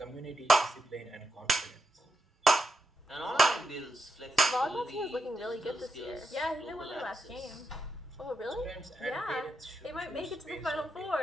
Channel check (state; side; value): normal; both; correlation 0.85